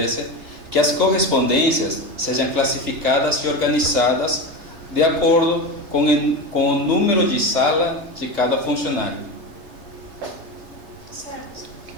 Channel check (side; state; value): left; late; 3.3 ms